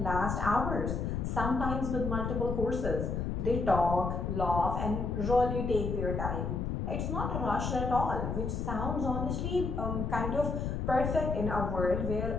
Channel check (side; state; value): left; noise; rumble, 2 dB below the sound